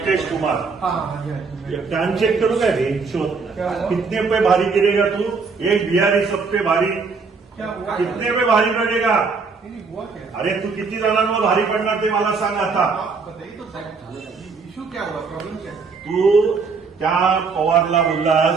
कुमार कान चेक करू का रे शोध कितने पे भारी गिरेगा तू? एक बिहारी सब पे भारी कितने पे भारी पडेगा? अरे तू किती जणांवर भारी पडणार ते मला सांग आता। इश्यू क्या हुआ, प्रॉब्लेम क्या? तू त्या पवारला बोललास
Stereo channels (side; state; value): left; quieter; 4.8 dB